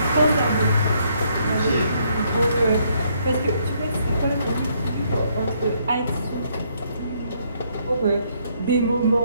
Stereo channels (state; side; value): inverted; both; correlation -0.71